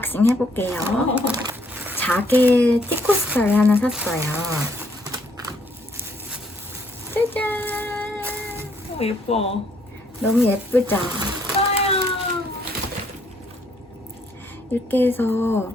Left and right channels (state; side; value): normal; both; correlation 0.68